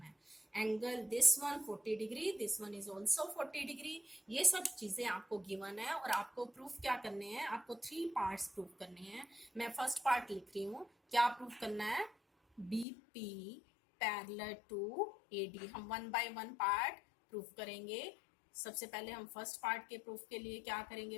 है. Angle this one 40 degree, this one is also 40 degree. ये सब चीजें आपको गिवन है और आपको प्रूफ क्या करने हैं? आपको 3 पार्ट्स प्रूफ करने हैं. मैं फर्स्ट पार्ट लिख रही हूँ. क्या प्रूफ करना है? BP parallel to AD. हम 1 by 1 पार्ट प्रूफ करेंगे. सबसे पहले हम फर्स्ट पार्ट के प्रूफ के लिए क्या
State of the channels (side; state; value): right; drops out; at 12.9 s